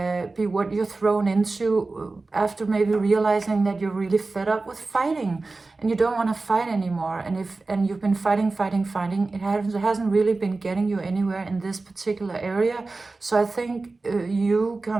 what you're thrown into after maybe realizing that you're really fed up with fighting and you don't want to fight anymore. And you've been fighting, it hasn't really been getting you anywhere in this particular area. So I think you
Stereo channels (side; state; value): left; quieter; 3.6 dB